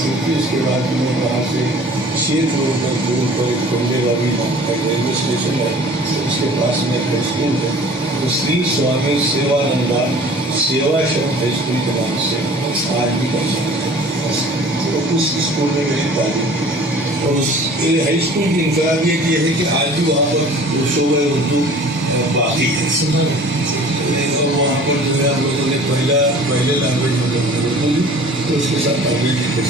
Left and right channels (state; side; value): normal; both; correlation 0.47